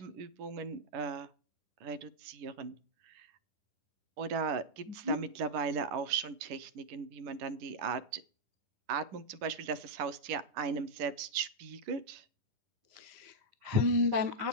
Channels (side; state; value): left; late; 11 ms